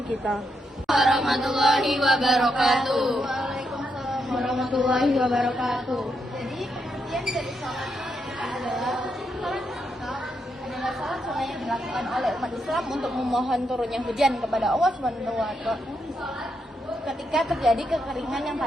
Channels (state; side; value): normal; both; correlation 0.81